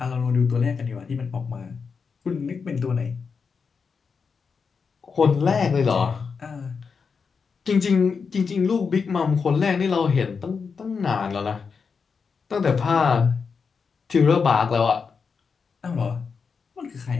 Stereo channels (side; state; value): right; quieter; 5.5 dB